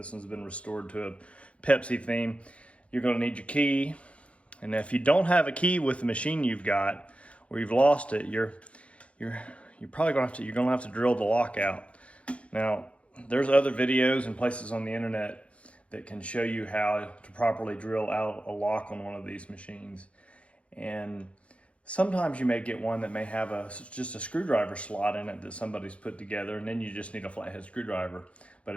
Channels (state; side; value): late; right; 0.062 ms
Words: one's been restored to a Pepsi theme. You're gonna need your key. And if you don't have a key with the machine you've got, or you've lost it, you're probably gonna have to drill the lock out. Now, there's other videos and places on the internet that can show you how to properly drill out a lock on one of these machines. And sometimes you may get one that may have just a screwdriver slot in it that somebody's put together, and then you just need a flathead screwdriver. But